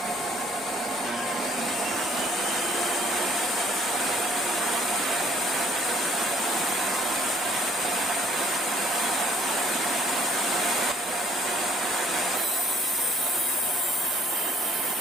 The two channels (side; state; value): right; noise; hum, 30 dB below the sound